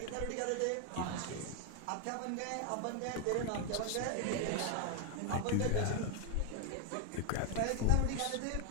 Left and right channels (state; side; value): different; both; correlation 0.00